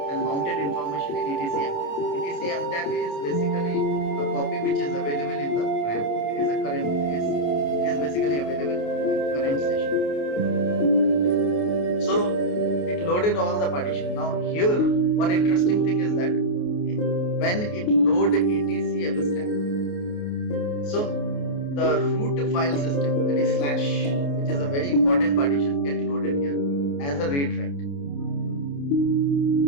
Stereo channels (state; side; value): late; right; 28 ms